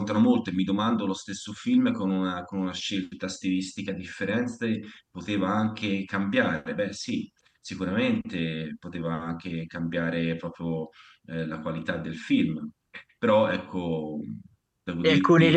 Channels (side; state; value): both; identical; correlation 1.00